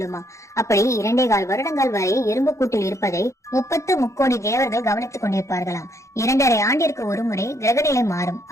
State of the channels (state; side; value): late; right; 0.15 ms